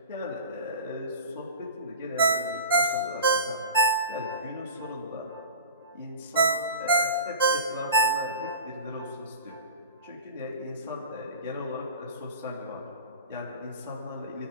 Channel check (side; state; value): both; inverted; correlation -0.35